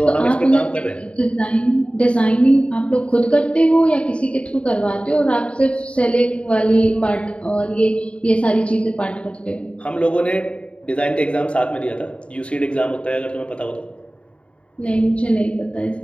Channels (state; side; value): late; right; 0.059 ms